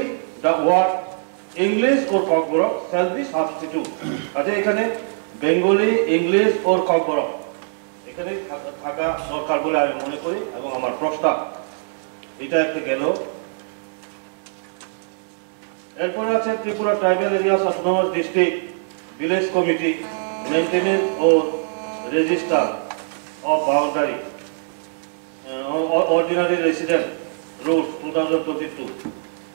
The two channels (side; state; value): left; silent; digital silence